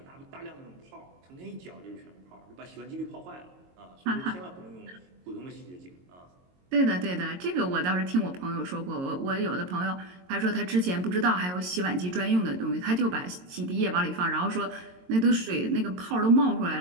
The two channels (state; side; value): late; left; 22 ms